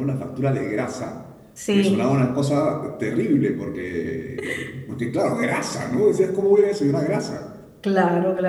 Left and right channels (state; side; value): identical; both; correlation 1.00